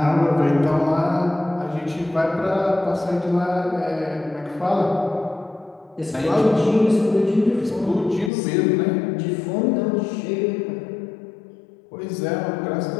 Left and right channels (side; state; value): right; drops out; at 8.3 s